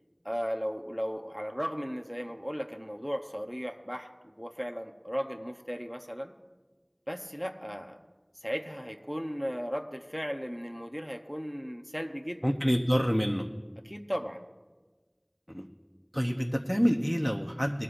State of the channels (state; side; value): identical; both; correlation 1.00